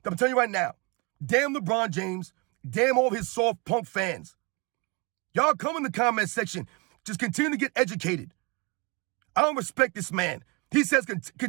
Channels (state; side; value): quieter; left; 29.7 dB